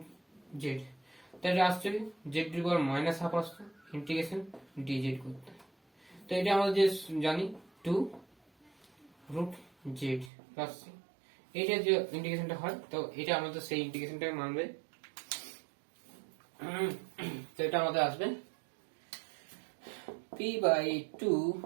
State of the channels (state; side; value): drops out; left; at 10.3 s